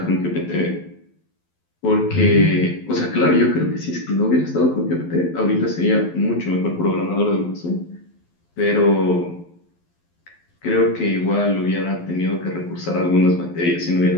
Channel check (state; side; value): late; right; 12 ms